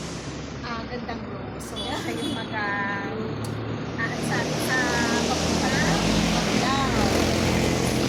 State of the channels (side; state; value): both; identical; correlation 1.00